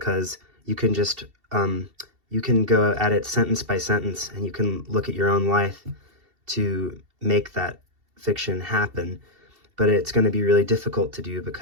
you can just, you can go at it sentence by sentence, and you can look at your own life to make that fiction happen. But it's going to be really difficult to do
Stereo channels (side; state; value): left; late; 2.7 ms